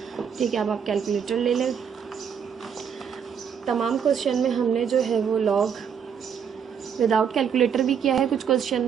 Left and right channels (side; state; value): left; quieter; 7.5 dB